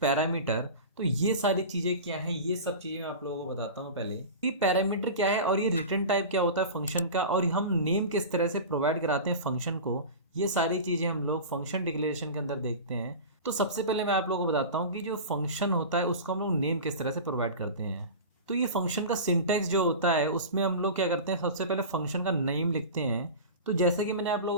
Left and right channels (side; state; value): both; inverted; correlation -0.31